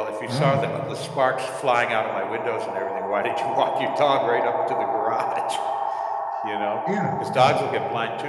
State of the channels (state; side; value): identical; both; correlation 1.00